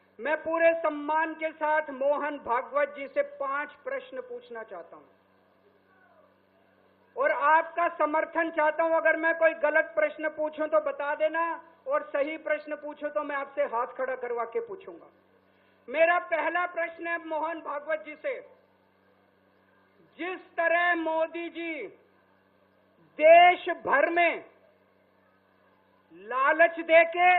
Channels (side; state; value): both; identical; correlation 1.00